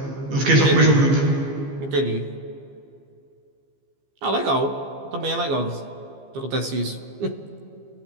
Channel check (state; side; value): late; left; 15 ms